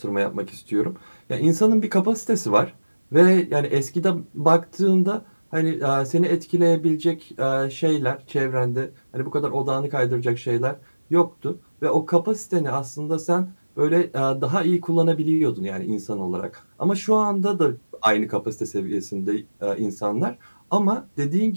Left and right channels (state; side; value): inverted; both; correlation -1.00